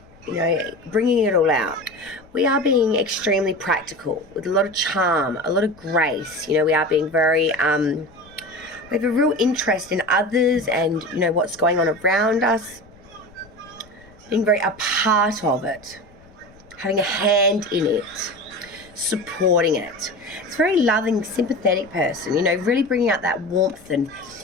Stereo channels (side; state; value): left; noise; rumble, 26 dB below the sound